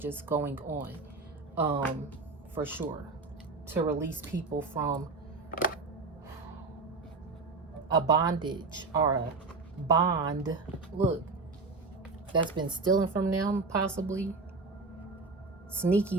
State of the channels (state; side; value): quieter; left; 3.9 dB